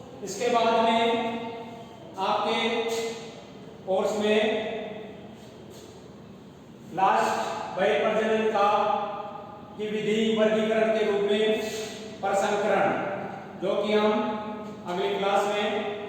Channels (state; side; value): identical; both; correlation 1.00